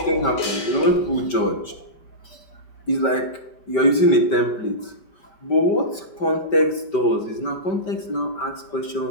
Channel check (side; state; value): right; late; 5.2 ms